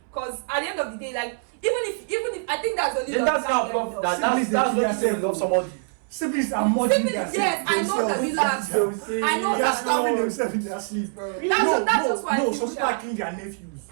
Because at the end of the day, like even if I think that's only love. That's what you say love somebody. Siblings are more than themselves. Yes, I know that. Relax. I know they are starving themselves in their sleep. That's just why. No, some people are killing their nephews.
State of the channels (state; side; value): silent; left; 62 dB below the other